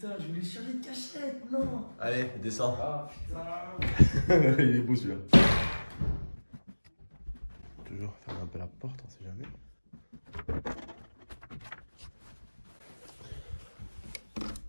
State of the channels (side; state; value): both; inverted; correlation -1.00